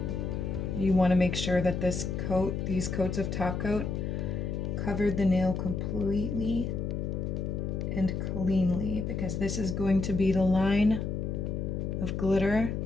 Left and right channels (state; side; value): noise; left; hum, 2 dB below the sound